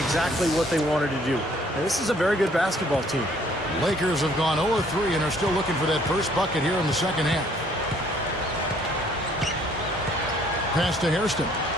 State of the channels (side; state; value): both; normal; correlation 0.61